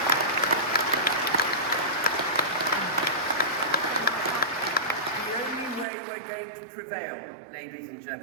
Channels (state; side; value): drops out; left; at 5.9 s